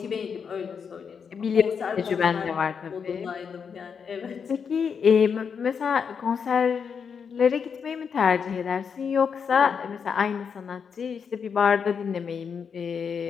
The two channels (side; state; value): right; quieter; 6.5 dB